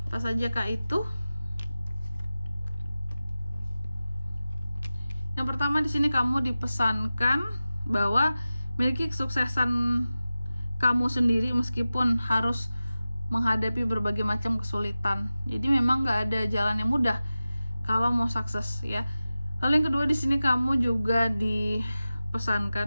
Apa saja Kak itu? Yang pertama di sini kamu dipesankan bahwa miliki kesuksesan kamu sendiri meskipun harus menghadapi berbagai macam kesulitan. Jadi memang nggak ada jalan yang mudah kalau mau sukses ya. Lalu yang kedua di sini kamu juga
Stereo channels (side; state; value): both; inverted; correlation -0.95